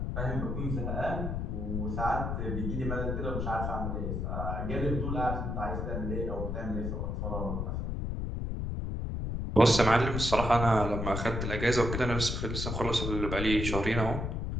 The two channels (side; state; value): left; noise; rumble, 2 dB below the sound